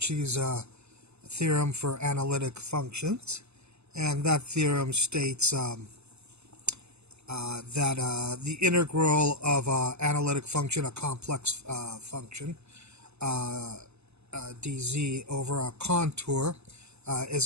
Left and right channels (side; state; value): left; late; 0.80 ms